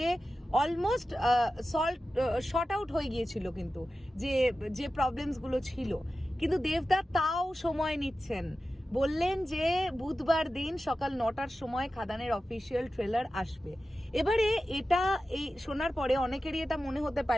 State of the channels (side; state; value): both; normal; correlation 0.93